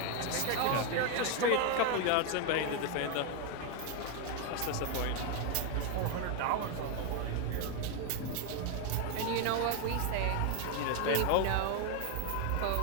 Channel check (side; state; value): both; different; correlation 0.01